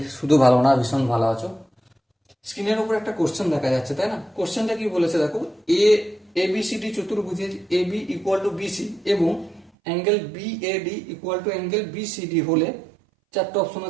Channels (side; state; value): left; drops out; at 9.7 s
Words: শুধু ভালো না ভীষণ ভালো আছো। স্ক্রিনের উপর একটা কোশ্চেন দেখা যাচ্ছে, তাই না? কোশ্চেনটা কি বলেছে দেখো, এবিসিডি চতুর্ভুজের A B equal to BC এবং angle B A D equal to angle BCD হলে চারটে অপশন